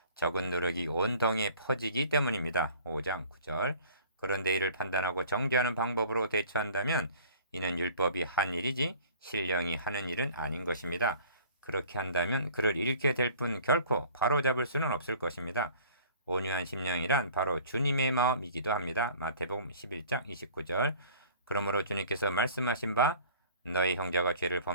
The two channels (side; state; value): both; inverted; correlation -0.48